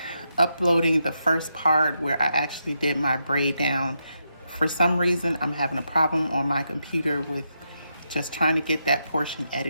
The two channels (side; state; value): both; inverted; correlation -0.82